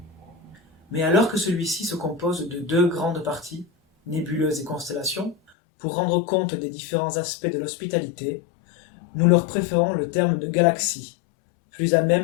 Mais alors que celui-ci se compose de deux grandes parties, nébuleuses et constellations, pour rendre compte des différents aspects de l'hospitalité, nous leur préférons le terme de galaxie, plus à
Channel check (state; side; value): drops out; right; at 5.4 s